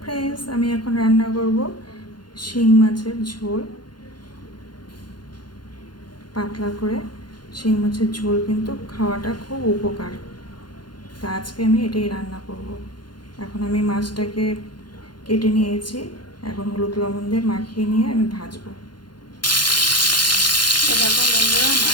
friends, আমি এখন রান্না করব শিং মাছের ঝোল। পাতলা করে শিং মাছের ঝোল কিন্তু খাওয়াটা খুব উপকার। তা আজকে আমি এটাই রান্না করব। এখন আমি মাছটাকে কেটে নিয়েছি, এখন হলুদ লবণ দিয়ে মাখিয়ে নিয়ে আমি ভাজবো। দেখো বন্ধুরা,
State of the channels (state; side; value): late; right; 0.71 ms